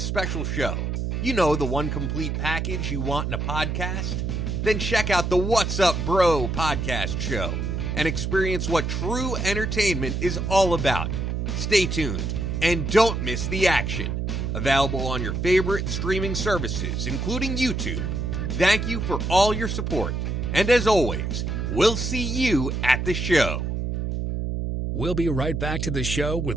show? You know, the one complete package you want in a podcast? Then check out the What's Up Bro podcast show and experience what true entertainment is all about. Stay tuned and don't miss the action. Available on your favorite streaming services, including YouTube. Thank you for all your support. And as always, we'll see you at the show. We'll be right back to the show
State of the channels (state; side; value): noise; right; hum, 2 dB below the sound